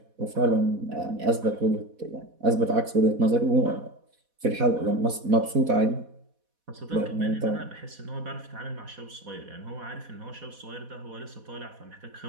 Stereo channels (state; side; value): late; left; 4.1 ms